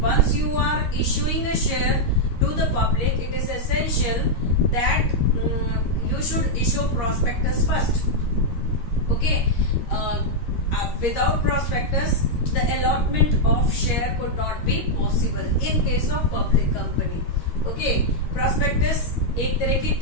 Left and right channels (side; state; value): right; late; 13 ms